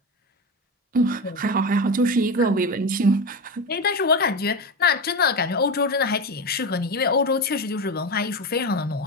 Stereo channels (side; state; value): both; normal; correlation 0.20